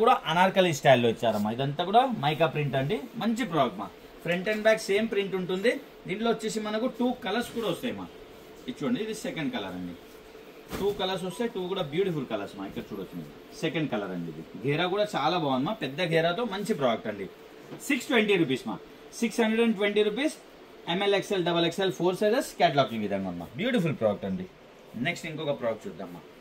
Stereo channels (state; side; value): identical; both; correlation 1.00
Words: కూడా అనార్కలి స్టైల్లో ఇచ్చారమ్మా ఇదంతా కూడా మైకా ప్రింట్ అండి మంచి ప్రోడక్ట్ మా front and back same print ఉంటుంది దీంట్లో వచ్చేసి మనకు 2 కలర్స్ కూడా వస్తాయి మా ఇది చూడండి ఇది సెకండ్ కలర్ అండి 2 కలర్స్ వస్తాయి 2 కూడా బ్యూటిఫుల్ కలర్స్ మా ఇక్కడ చూడొచ్చు మీరు సెకండ్ కలర్ అండి ఇది ఘేరా కూడా చాలా బాగుంది మా పెద్ద ఘేరాతో మంచి ప్రోడక్ట్ అండి 620 రూపీస్ మా 620 rupees ML XL XXL 4 sizes catalogue ఈ విధంగా ఉందా బ్యూటిఫుల్ ప్రోడక్ట్ అండి నెక్స్ట్ ఇంకొక ప్రోడక్ట్ చూద్దామా